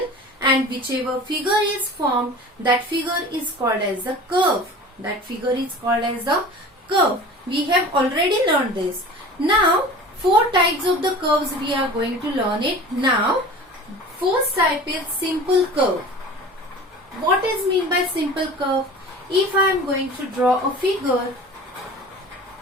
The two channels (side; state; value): both; normal; correlation 0.39